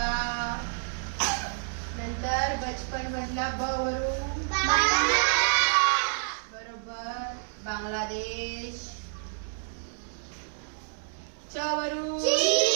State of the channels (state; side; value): silent; left; 59 dB below the other